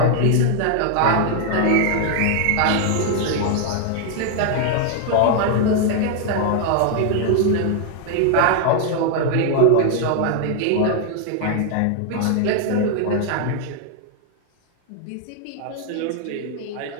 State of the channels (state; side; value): different; both; correlation 0.00